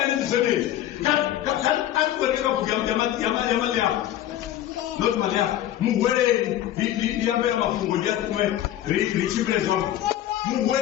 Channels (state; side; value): quieter; right; 12.4 dB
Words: zone kan atweleka kugamba not malia muwele liambia mafungo ya kumwe richibrezo